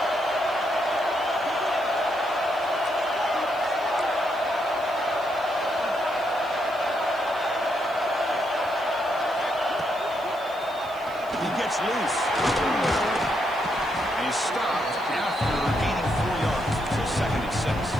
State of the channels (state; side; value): noise; right; hiss, 24 dB below the sound